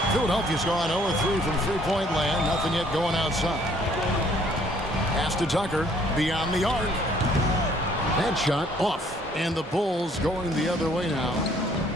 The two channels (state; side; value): normal; both; correlation 0.61